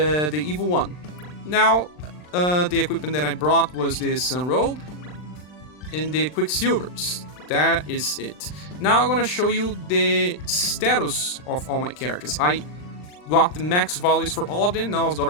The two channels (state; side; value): late; right; 39 ms